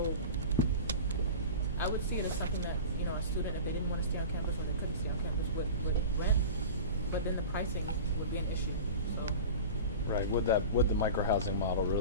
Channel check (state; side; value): inverted; both; correlation -0.33